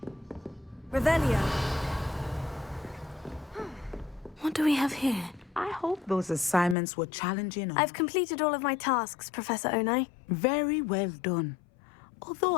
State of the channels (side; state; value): right; drops out; at 6.8 s